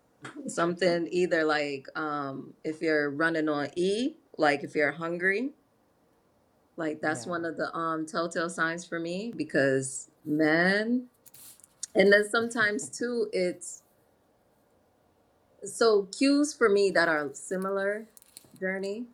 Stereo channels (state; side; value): identical; both; correlation 1.00